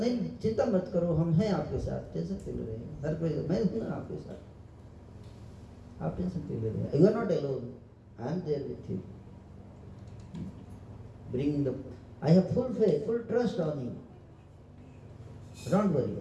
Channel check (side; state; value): both; identical; correlation 1.00